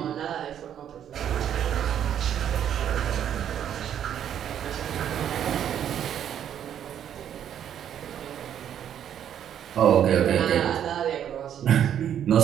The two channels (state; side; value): quieter; left; 9.7 dB